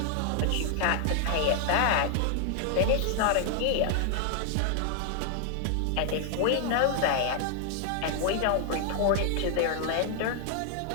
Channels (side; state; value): both; different; correlation 0.00